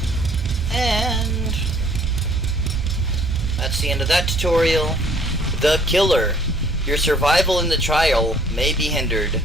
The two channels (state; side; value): normal; both; correlation 0.59